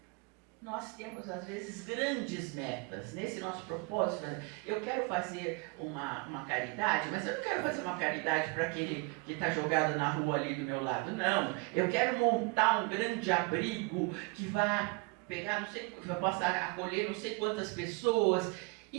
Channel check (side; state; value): left; quieter; 28.4 dB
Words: Nós temos, às vezes, grandes metas. Nesse nosso propósito, eu quero fazer uma caridade, mas eu não quero fazer uma caridade para aquele que está jogado na rua ali do meu lado. Não, eu quero montar um grande abrigo que vai pegar, vai passar a acolher não sei quantas pessoas.